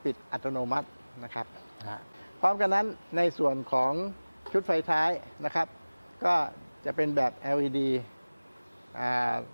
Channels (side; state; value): both; inverted; correlation -1.00